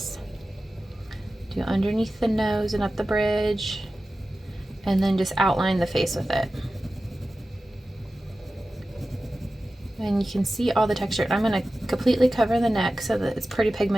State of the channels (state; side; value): normal; both; correlation 0.94